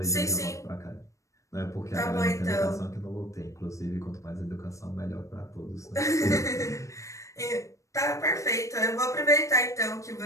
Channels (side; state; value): right; late; 0.15 ms